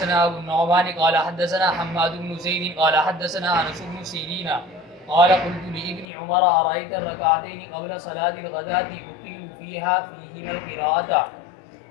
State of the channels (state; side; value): drops out; right; at 6.1 s